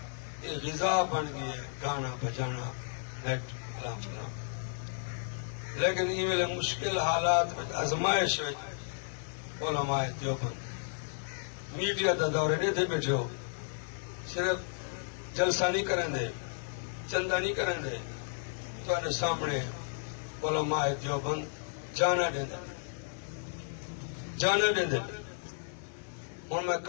یہ غذا بن گئی ہے گانا بجانا، نیٹ کلام چلانا، لیکن یہ ویلے مشکل حالات میں ازمائش ہے علماء دیوبند میڈیا دا دورے نہیں تھے بیٹھے ہو، صرف جلسہ نہیں کریں دے، چندہ نہیں کریں دے، تو سامنے علماء دیوبند جانا دیں دے، جانا دیں دے، اور میں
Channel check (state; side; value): silent; right; 56 dB below the other